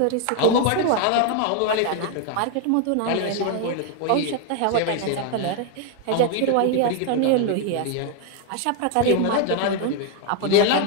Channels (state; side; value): different; both; correlation 0.01